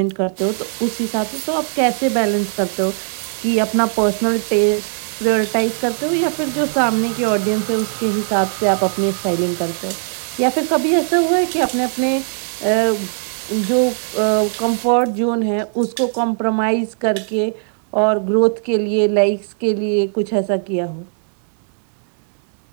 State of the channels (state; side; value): silent; left; digital silence